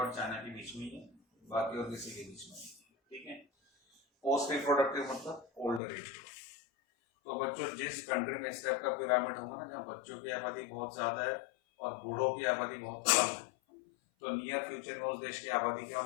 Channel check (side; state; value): right; drops out; at 5.8 s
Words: और चाइना के बीच में ही है, बाकी और किसी के बीच में नहीं, ठीक है। पोस्ट रिप्रोडक्टिव मतलब ओल्डर एज। तो बच्चों, जिस कंट्री में इस टाइप का पिरामिड होगा ना, जहाँ बच्चों की आबादी बहुत ज्यादा है और बूढ़ों की आबादी बहुत कम है, तो नियर फ्यूचर में उस देश की आबादी क्या